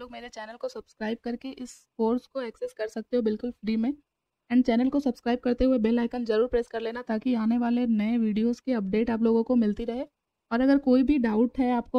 लोग मेरे चैनल को सब्सक्राइब करके इस कोर्स को एक्सेस कर सकते हो बिल्कुल फ्री में। एंड चैनल को सब्सक्राइब करते हुए बेल आइकन ज़रूर प्रेस कर लेना ताकि आने वाले नए वीडियोस की अपडेट आप लोगों को मिलती रहे। और अगर कोई भी डाउट है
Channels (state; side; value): identical; both; correlation 1.00